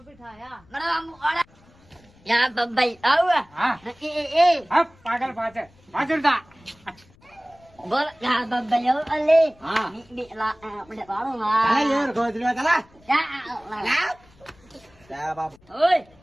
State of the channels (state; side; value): noise; left; rumble, 29 dB below the sound